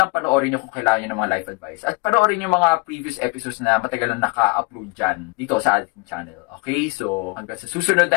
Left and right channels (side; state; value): right; quieter; 28.8 dB